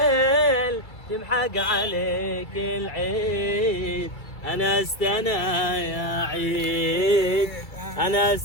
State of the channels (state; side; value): late; right; 2.3 ms